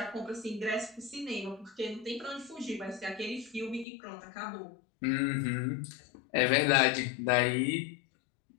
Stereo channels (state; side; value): drops out; right; at 3.9 s